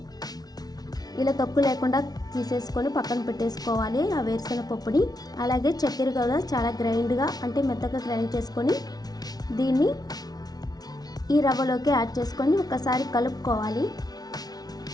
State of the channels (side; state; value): right; late; 0.19 ms